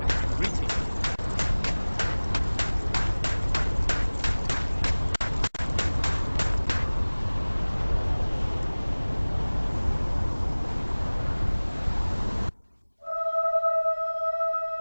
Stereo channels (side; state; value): both; inverted; correlation -1.00